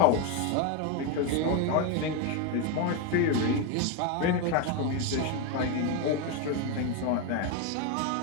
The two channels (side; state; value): both; different; correlation 0.02